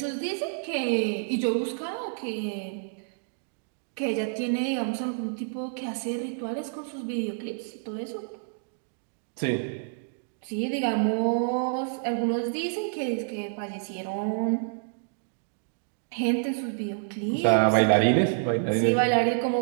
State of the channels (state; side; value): silent; left; digital silence